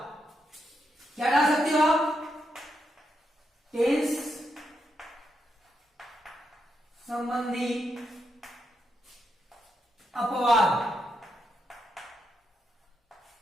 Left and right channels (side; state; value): both; normal; correlation 0.82